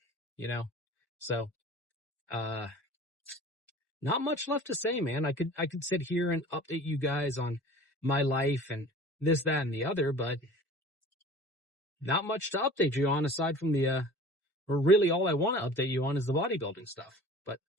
So, not much left to say, man. I could sit here and update you guys on my life and this, that, and the other, but not much to update you on aside from or really all I want to update you on is the bodybuilding stuff. But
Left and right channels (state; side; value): normal; both; correlation 0.43